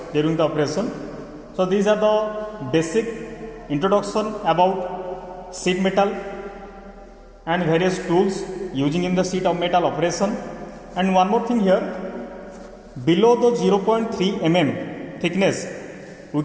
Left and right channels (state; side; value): identical; both; correlation 1.00